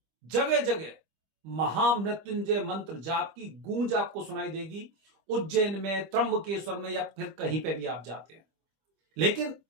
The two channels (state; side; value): late; left; 25 ms